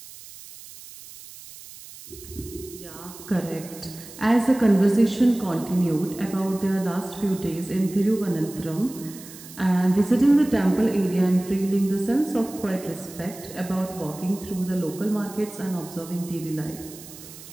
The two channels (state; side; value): noise; right; hiss, 17 dB below the sound